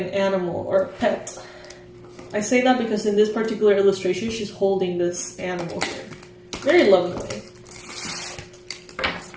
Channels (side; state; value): both; identical; correlation 1.00